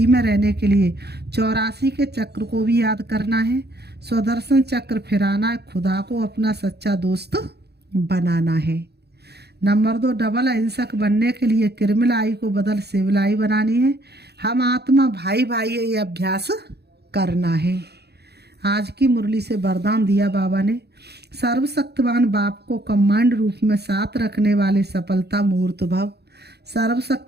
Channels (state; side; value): late; left; 0.48 ms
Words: में रहने के लिए 84 के चक्र को भी याद करना है। स्वदर्शन चक्र फिराना है, खुदा को अपना सच्चा दोस्त बनाना है। नंबर 2, डबल अहिंसक बनने के लिए किरमिलाई को बदल सिविलाई बनानी है। हम आत्मा भाई भाई ये अभ्यास करना है। आज की मुरली से वरदान दिया बाबा ने, सर्वशक्तिवान बाप को कमांड रूप में साथ रखने वाले सफलता मूर्त भव।